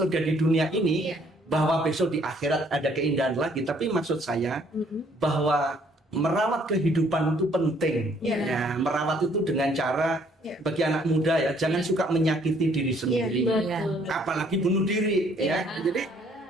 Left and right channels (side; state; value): both; normal; correlation 0.63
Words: di dunia ini. Bahwa besok di akhirat ada keindahan lagi, tapi maksud saya bahwa merawat kehidupan itu penting. Ya, merawat itu dengan cara bagi anak muda ya, jangan suka menyakiti diri sendiri, apalagi bunuh diri. Ya, jadi